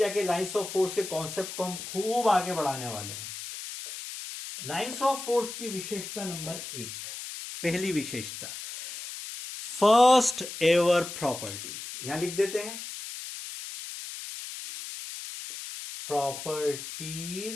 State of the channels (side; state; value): left; noise; hiss, 9 dB below the sound